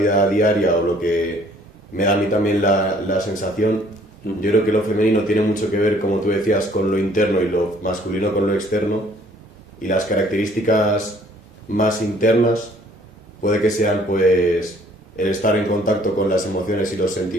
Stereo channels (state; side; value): normal; both; correlation 0.59